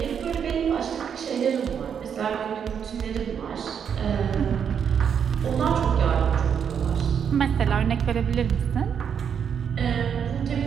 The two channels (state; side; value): quieter; left; 7.7 dB